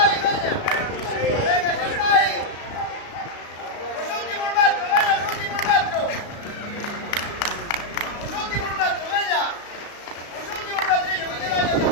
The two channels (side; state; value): right; late; 35 ms